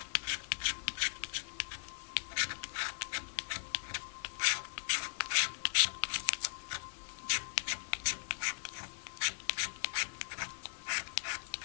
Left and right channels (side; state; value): right; silent; digital silence